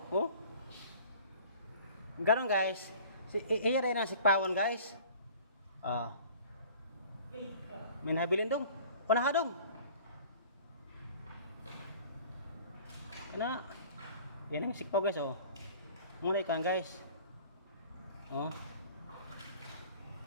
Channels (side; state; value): both; inverted; correlation -0.47